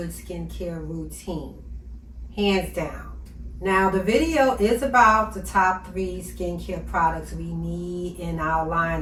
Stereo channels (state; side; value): identical; both; correlation 1.00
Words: skincare routine, hands down. Now the video is about the top 3 skincare products we need in our